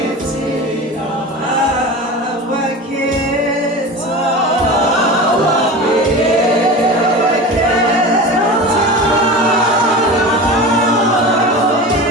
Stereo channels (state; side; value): normal; both; correlation 0.30